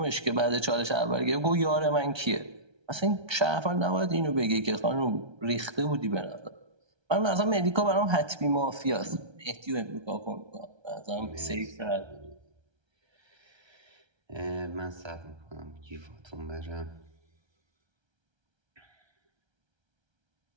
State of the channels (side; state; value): left; late; 1.3 ms